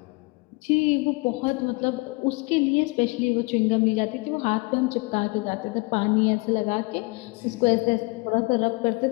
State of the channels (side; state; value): right; quieter; 27.5 dB